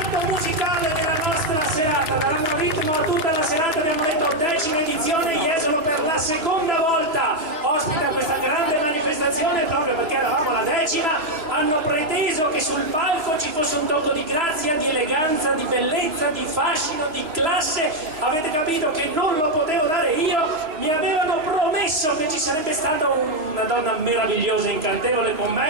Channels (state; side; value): late; left; 3.0 ms